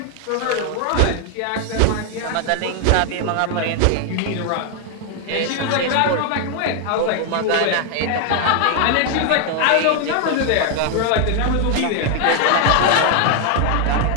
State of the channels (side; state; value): both; different; correlation 0.00